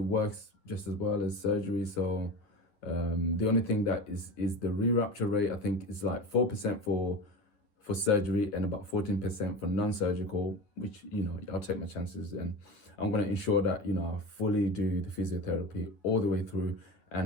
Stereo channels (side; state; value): right; late; 9.5 ms